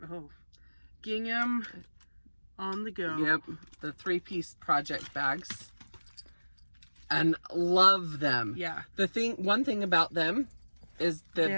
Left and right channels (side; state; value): both; inverted; correlation -1.00